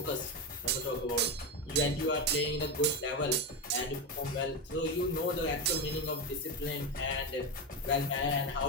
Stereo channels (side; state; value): both; normal; correlation 0.14